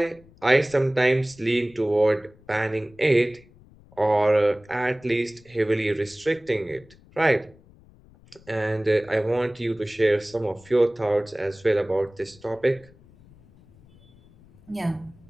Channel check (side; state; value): left; noise; rumble, 26 dB below the sound